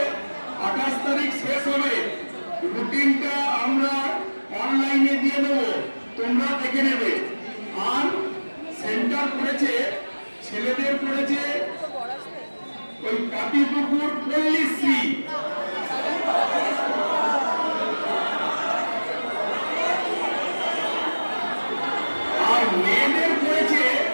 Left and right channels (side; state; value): both; inverted; correlation -1.00